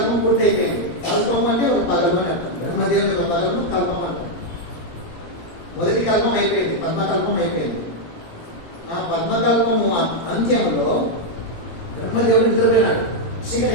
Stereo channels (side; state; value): right; late; 18 ms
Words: పూర్తి అయిపోయింది. కల్పం అంటే ఒక పగలు అని అర్థం. బ్రహ్మదేవుని యొక్క పగలను కల్పం అంటాం. మొదటి కల్పం అయిపోయింది, పద్మకల్పం అయిపోయింది. ఆ పద్మకల్పము అంత్యములో బ్రహ్మదేవుడు నిద్రపోయినాడు. చీకటి